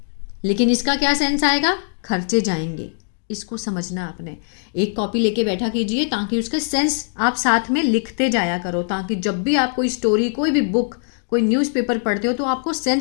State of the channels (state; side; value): silent; right; 65 dB below the other